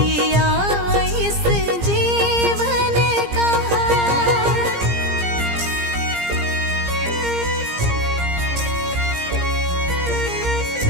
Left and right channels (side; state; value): left; late; 17 ms